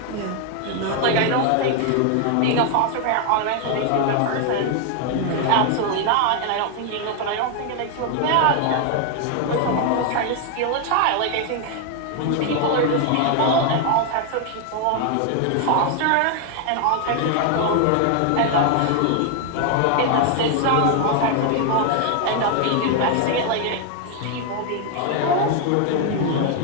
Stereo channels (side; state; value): both; different; correlation 0.00